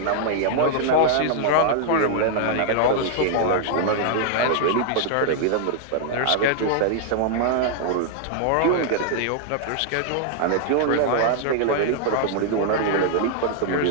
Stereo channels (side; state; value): both; different; correlation -0.01